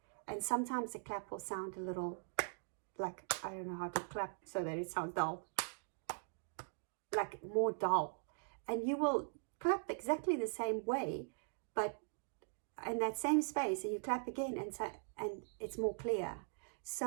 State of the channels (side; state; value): left; silent; digital silence